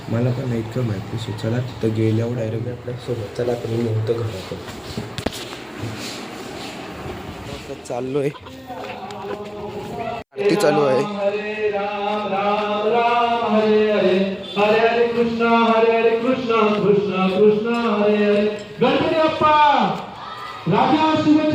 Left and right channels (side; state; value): both; identical; correlation 1.00